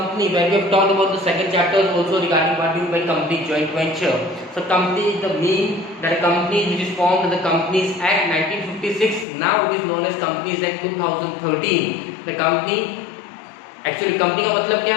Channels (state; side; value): drops out; right; at 9.2 s